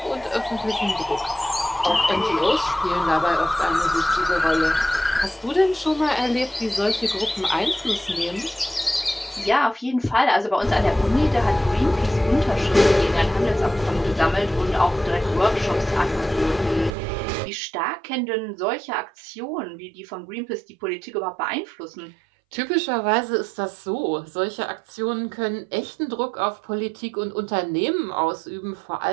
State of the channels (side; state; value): left; drops out; at 16.9 s